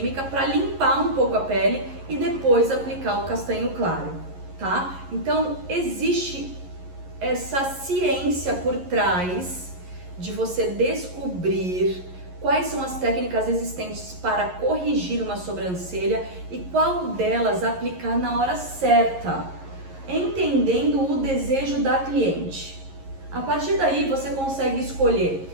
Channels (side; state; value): left; late; 11 ms